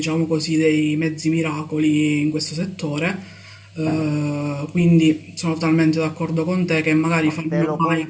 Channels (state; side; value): identical; both; correlation 1.00